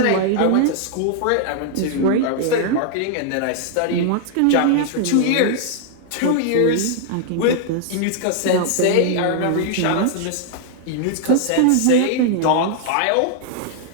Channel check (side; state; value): both; different; correlation 0.00